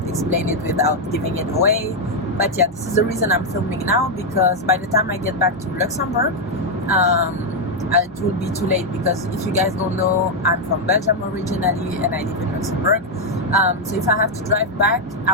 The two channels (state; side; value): normal; both; correlation 0.00